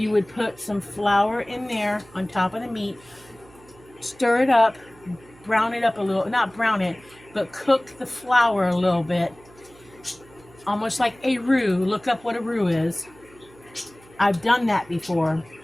would put some flour in there on top of the meat, stir it up, brown it up a little, not brown it, but cook the flour a little bit, almost like a roux. Look up what a roux is. I've done that before,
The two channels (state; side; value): noise; right; hum, 25 dB below the sound